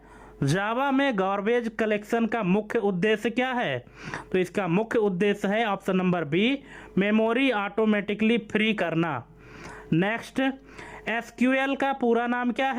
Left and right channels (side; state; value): both; identical; correlation 1.00